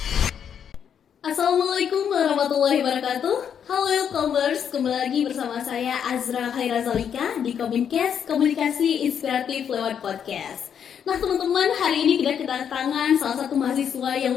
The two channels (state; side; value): quieter; right; 8.2 dB